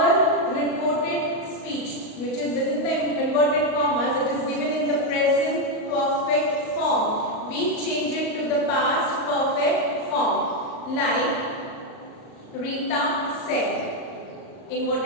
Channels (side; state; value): right; late; 38 ms